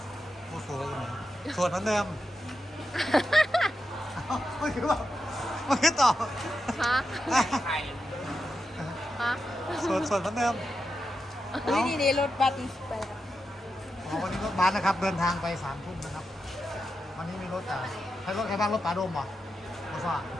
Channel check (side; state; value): both; normal; correlation 0.88